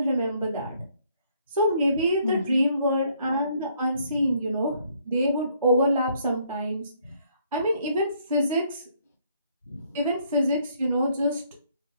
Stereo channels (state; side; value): inverted; both; correlation -0.67